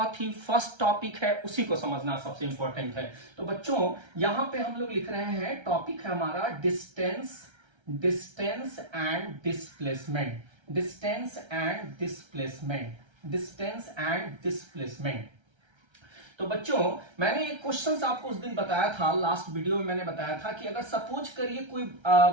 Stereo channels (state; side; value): late; left; 1.3 ms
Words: ही फर्स्ट टॉपिक है, उसी को समझना सबसे इंपॉर्टेंट है। तो बच्चों यहां पे हम लोग लिख रहे हैं, टॉपिक है हमारा डिस्टेंस एंड डिस्प्लेसमेंट। तो बच्चों मैंने एक क्वेश्चन आपको उस दिन बताया था, लास्ट वीडियो में मैंने बताया था कि अगर सपोज करिए कोई